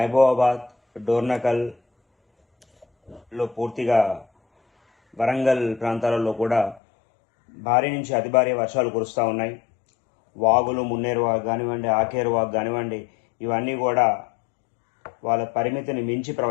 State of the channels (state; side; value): drops out; right; at 6.8 s